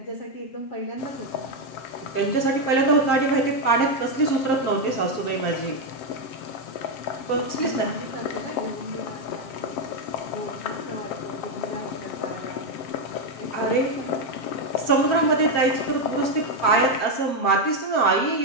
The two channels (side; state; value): right; late; 7.5 ms